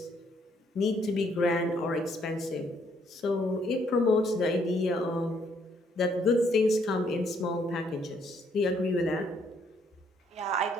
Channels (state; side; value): normal; both; correlation 0.69